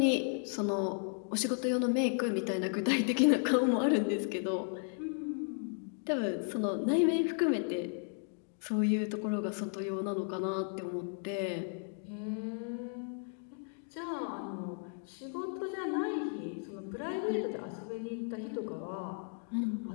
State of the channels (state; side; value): silent; right; 55 dB below the other